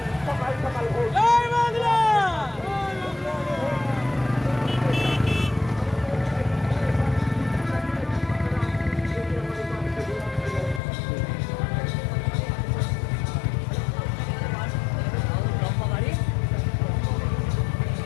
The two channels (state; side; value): drops out; right; at 10.8 s